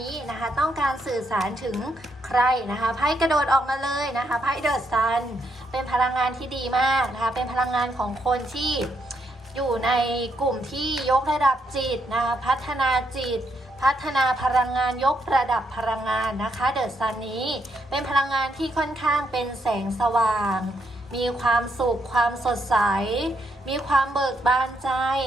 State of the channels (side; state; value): both; normal; correlation 0.76